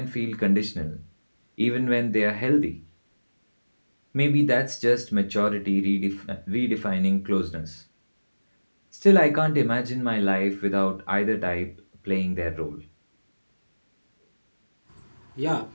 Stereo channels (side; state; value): both; inverted; correlation -1.00